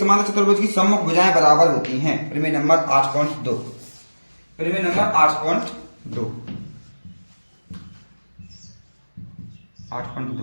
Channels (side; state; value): both; inverted; correlation -1.00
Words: चतुर्भुज की सम्मुख भुजाएं बराबर होती हैं, प्रमेय नंबर 8.2। प्रमेय नंबर